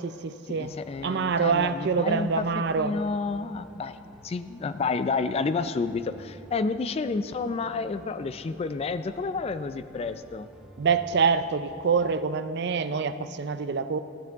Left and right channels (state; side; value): normal; both; correlation -0.05